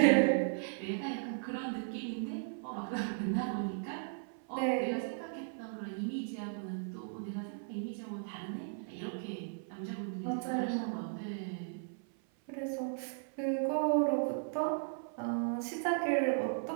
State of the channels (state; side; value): silent; left; 54 dB below the other